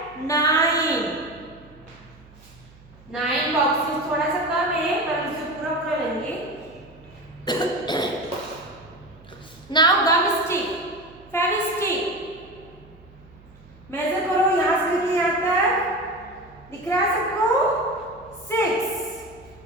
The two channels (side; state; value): right; noise; hum, 24 dB below the sound